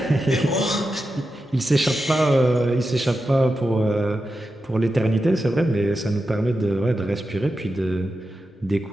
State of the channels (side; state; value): both; normal; correlation 0.90